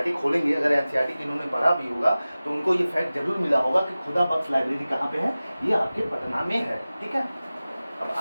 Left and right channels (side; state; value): both; inverted; correlation -0.97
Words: खोलेंगे, अगर एनसीईआरटी की इन्होंने पढ़ा भी होगा तो उनको ये फैक्ट जरूर मिला होगा कि खुदा बख्श लाइब्रेरी कहाँ पे है, ये आपके पटना में है, ठीक है। अब